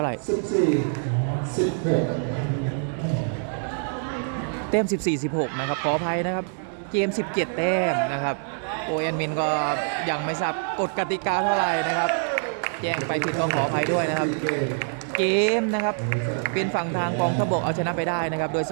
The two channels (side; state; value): left; silent; 62 dB below the other